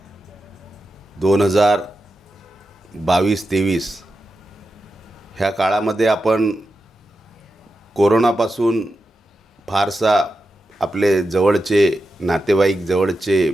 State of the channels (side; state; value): both; normal; correlation 0.89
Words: 2022-23 ह्या काळामध्ये आपण कोरोनापासून फारसा आपले जवळचे नातेवाईक, जवळचे